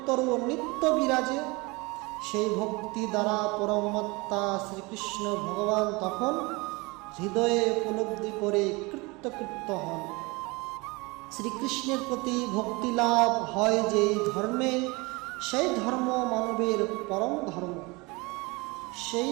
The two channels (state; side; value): quieter; left; 25.4 dB